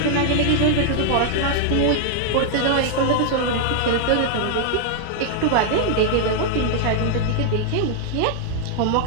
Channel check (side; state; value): both; different; correlation 0.00